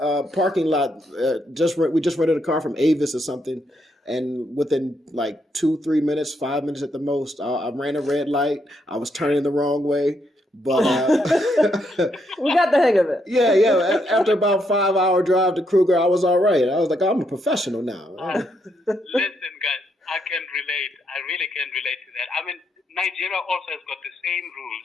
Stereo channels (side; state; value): both; normal; correlation 0.77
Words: parking lot. We just rented a car from Avis or something, and within like 2-3 minutes, 5 minutes at the most, I ran a red light. I was turning the wrong way. But we got the hang of it. Yeah. After about 5-hour drive to Kruger, I was all right. I was like, I'm a professional now. Listen, guys, I can relate. I really can relate to that. I mean, Nigeria also has got the same